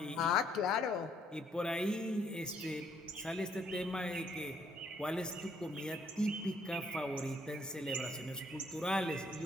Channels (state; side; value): normal; both; correlation 0.68